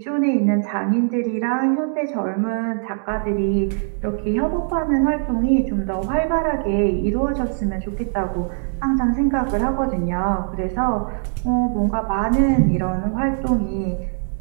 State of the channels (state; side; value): silent; left; 65 dB below the other